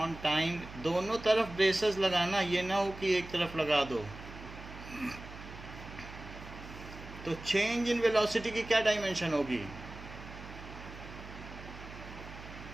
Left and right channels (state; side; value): noise; right; hum, 14 dB below the sound